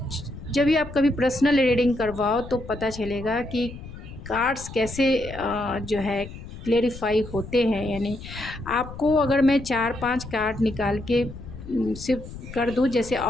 जब भी आप कभी पर्सनल रीडिंग करवाओ तो पता चलेगा कि कार्ड्स कैसे जो है क्लेरिफाई होते हैं। यानी आपको अगर मैं 4-5 कार्ड निकाल के सिर्फ कर दूँ जैसे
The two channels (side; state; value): left; noise; rumble, 13 dB below the sound